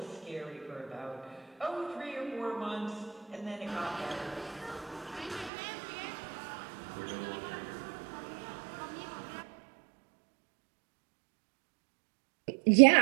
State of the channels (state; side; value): drops out; left; at 5.5 s